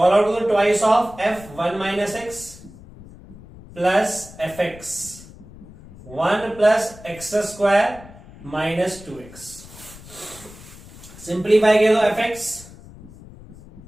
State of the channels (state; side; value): noise; left; rumble, 19 dB below the sound